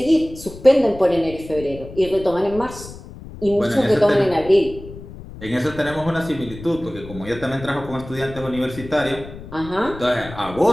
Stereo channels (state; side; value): noise; left; rumble, 15 dB below the sound